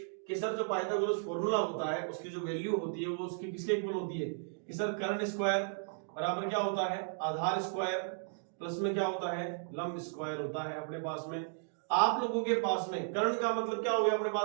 कि सर जो पाइथागोरस फॉर्मूला होता है उसकी जो वैल्यू होती है वो उसकी किसके इक्वल होती है कि सर कर्ण स्क्वायर बराबर क्या होता है, आधार स्क्वायर प्लस में क्या होता है, लंब स्क्वायर होता है अपने पास में। आप लोगों के पास में कर्ण का मतलब क्या हो गया अपने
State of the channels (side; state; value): left; silent; digital silence